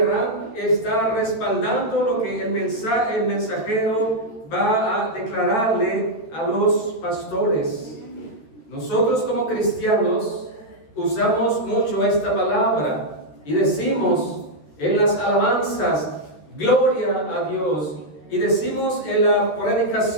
está respaldando lo que el mensajero va a declararle a los pastores. Nosotros como cristianos usamos mucho esta palabra y decimos en las alabanzas, gloria a Dios. Y decimos en la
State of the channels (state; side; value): late; right; 13 ms